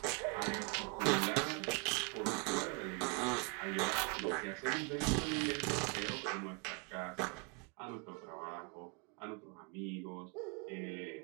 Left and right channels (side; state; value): left; quieter; 31.7 dB